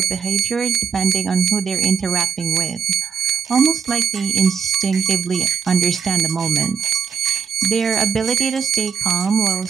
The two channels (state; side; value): quieter; left; 7.0 dB